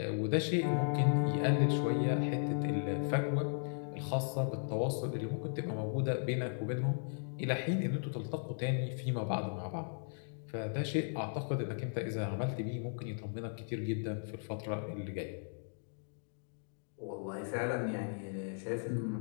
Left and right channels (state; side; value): silent; right; digital silence